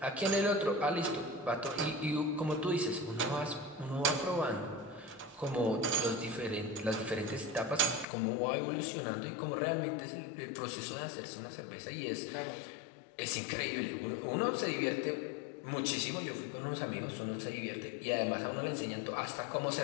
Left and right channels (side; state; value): right; drops out; at 8.1 s